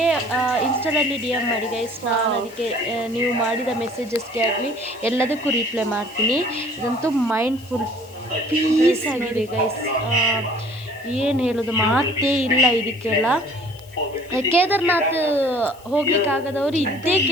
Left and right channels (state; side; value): noise; left; hiss, 25 dB below the sound